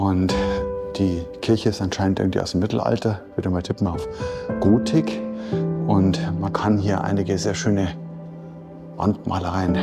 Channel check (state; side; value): identical; both; correlation 1.00